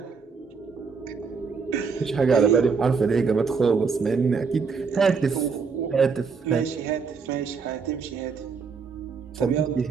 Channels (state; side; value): quieter; left; 5.3 dB